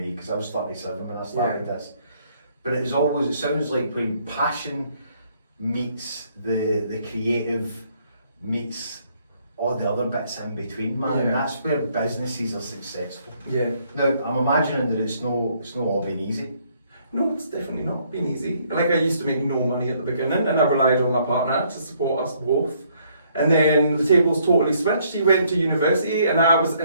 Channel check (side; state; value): both; inverted; correlation -0.67